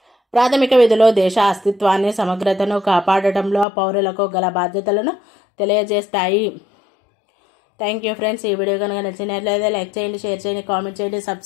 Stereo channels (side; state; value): right; drops out; at 3.7 s